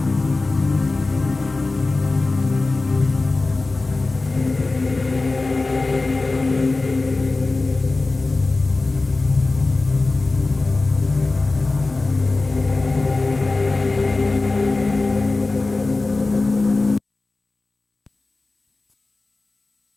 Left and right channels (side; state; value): right; quieter; 3.4 dB